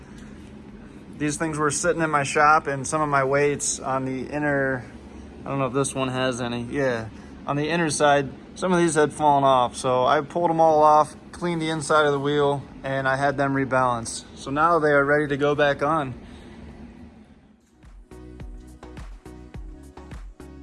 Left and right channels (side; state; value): both; identical; correlation 1.00